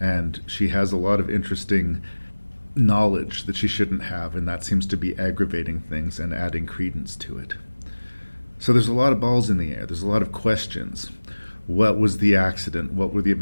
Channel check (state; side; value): inverted; both; correlation -1.00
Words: she has a lot of interesting knowledge that she shouldn't have, and that seems to be aggravating things and adding credence to it. So there's a lot of balls in the air. There's a lot of questions. What was the accident? What were the